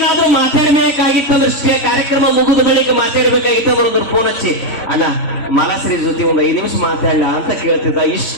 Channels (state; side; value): late; right; 3.5 ms